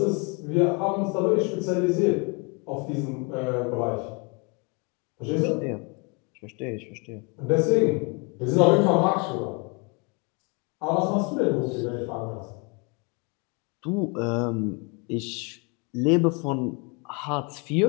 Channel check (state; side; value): quieter; right; 32.6 dB